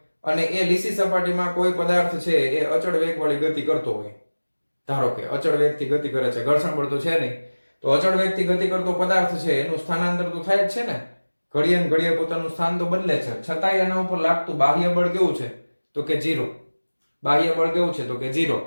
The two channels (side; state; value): both; inverted; correlation -1.00